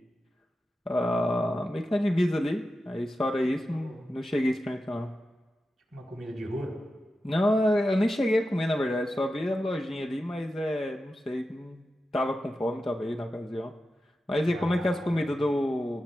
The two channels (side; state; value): both; normal; correlation 0.91